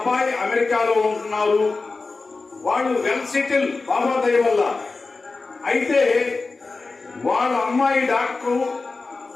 అమెరికాలో ఉంటున్నారు. వాళ్ళు వెల్ సెటిల్ బాబా దయ వల్ల. అయితే వాళ్ళ అమ్మాయి డాక్టరు,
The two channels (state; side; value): quieter; right; 3.8 dB